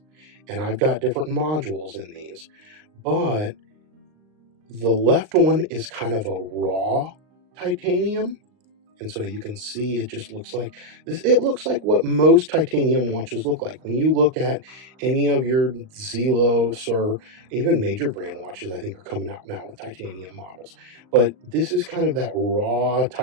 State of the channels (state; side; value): late; left; 38 ms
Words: And I've got different modules in these, but the left one is kind of a raw titanium. And so you can see it just looks like this. It looks like what most titanium watches look like. When you look at any of your Zelos or even major brand watches, I think are coming out now with titanium models. But this is kind of that raw